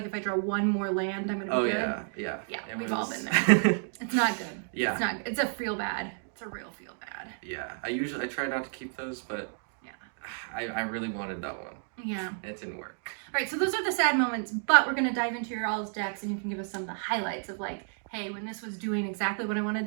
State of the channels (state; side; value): silent; left; 57 dB below the other